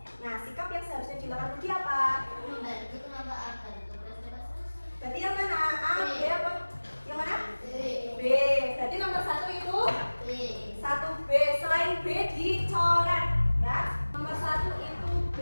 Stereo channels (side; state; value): both; inverted; correlation -1.00